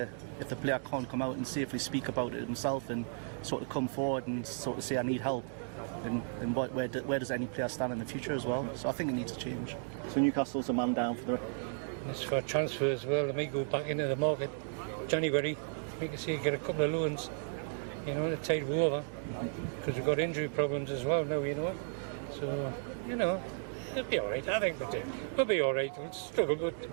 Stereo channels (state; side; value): silent; left; digital silence